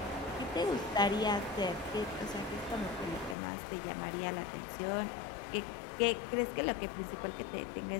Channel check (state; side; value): drops out; right; at 3.4 s